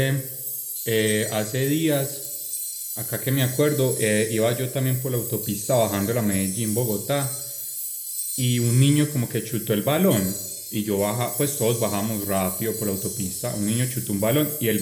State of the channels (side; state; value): both; identical; correlation 1.00